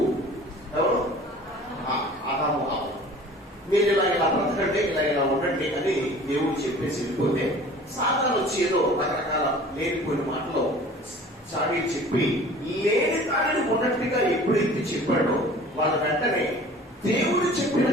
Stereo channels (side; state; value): both; normal; correlation 0.45